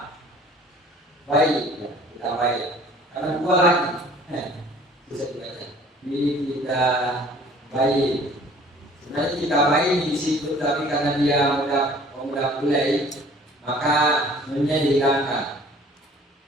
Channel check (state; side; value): normal; both; correlation 0.51